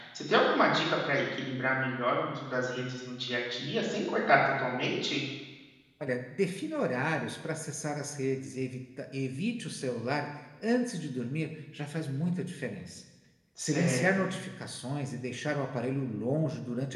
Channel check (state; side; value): identical; both; correlation 1.00